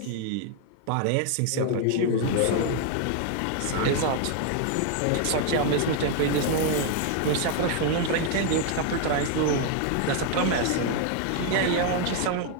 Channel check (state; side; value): different; both; correlation 0.00